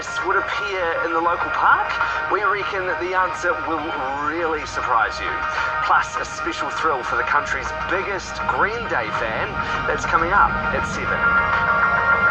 would appear in the local park? We reckon the answer will really surprise you. Plus, a special thrill for the country's biggest Green Day fan that's coming up at 7.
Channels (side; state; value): both; identical; correlation 1.00